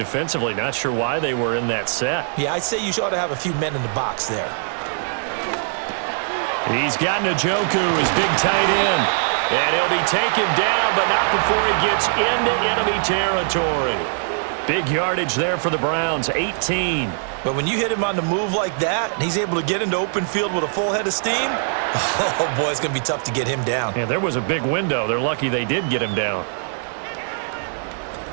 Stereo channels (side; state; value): left; silent; 65 dB below the other